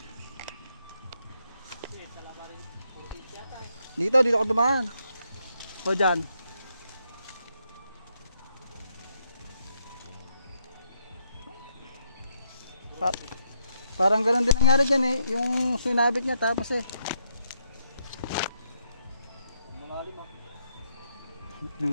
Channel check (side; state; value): both; inverted; correlation -0.76